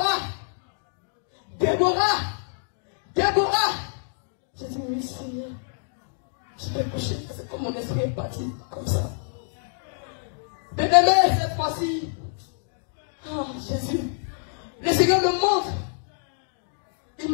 Déborah. Déborah. J'ai dit, oui, Seigneur. Je vais coucher. C'est comme mon esprit est parti, comme ça. Bien-aimé, cette fois-ci, ah, Jésus, le Seigneur me montre. Il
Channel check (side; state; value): right; silent; digital silence